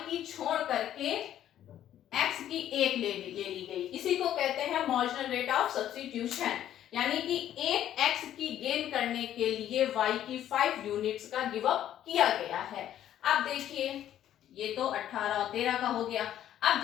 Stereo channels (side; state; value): right; quieter; 11.4 dB